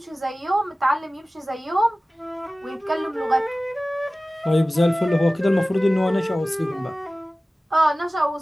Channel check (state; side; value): normal; both; correlation 0.97